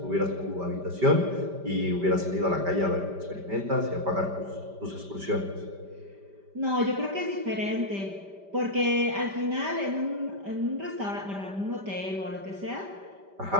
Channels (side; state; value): left; late; 5.1 ms